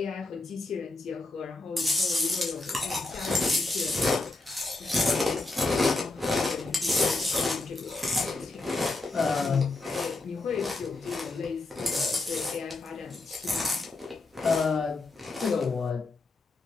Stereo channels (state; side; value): quieter; right; 3.2 dB